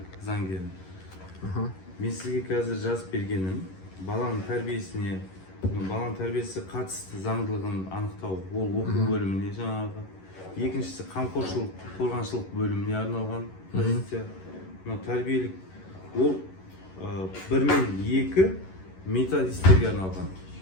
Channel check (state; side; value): late; right; 11 ms